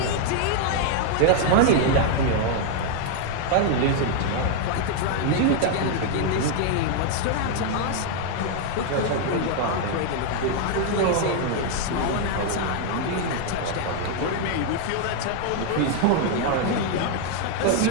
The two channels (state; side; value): different; both; correlation 0.00